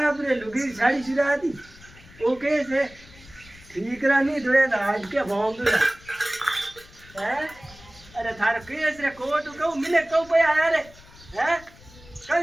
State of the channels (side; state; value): left; noise; rumble, 22 dB below the sound